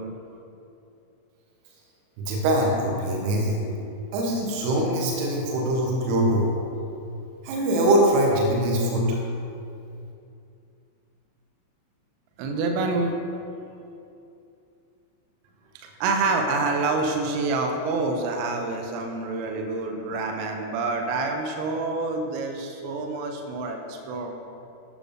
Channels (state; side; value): late; left; 38 ms